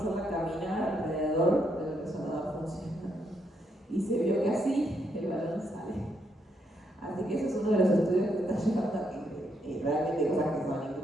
caminar alrededor del resonador funcionando. Y se vio que así el balón sale. Así que ese es uno de los estudios que está llegando aquí. Realmente cosas que son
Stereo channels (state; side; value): normal; both; correlation 0.77